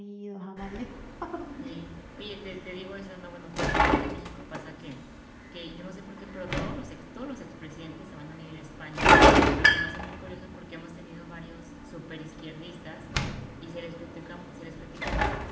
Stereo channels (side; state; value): both; identical; correlation 1.00